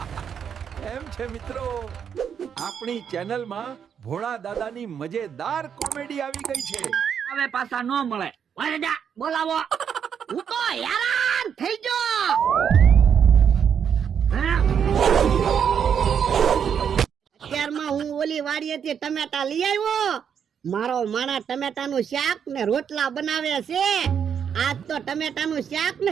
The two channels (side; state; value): left; quieter; 7.8 dB